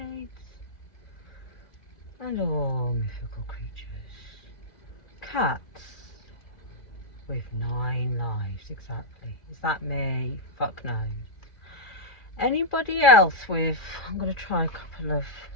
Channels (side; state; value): right; late; 2.4 ms